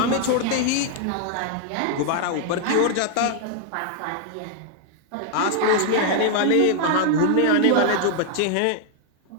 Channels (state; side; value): different; both; correlation 0.00